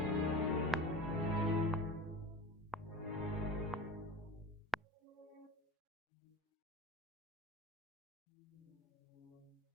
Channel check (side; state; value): both; normal; correlation 0.32